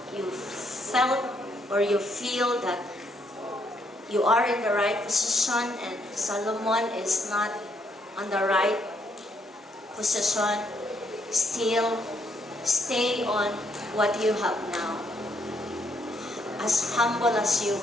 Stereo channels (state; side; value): normal; both; correlation 0.73